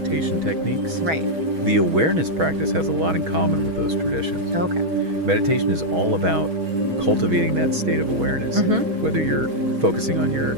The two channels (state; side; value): late; left; 6.3 ms